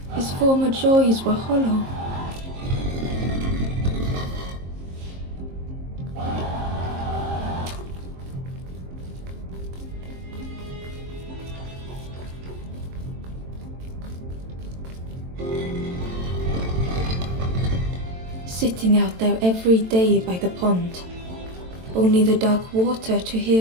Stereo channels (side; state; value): left; late; 22 ms